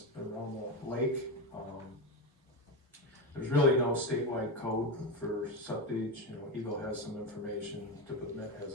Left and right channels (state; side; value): normal; both; correlation 0.14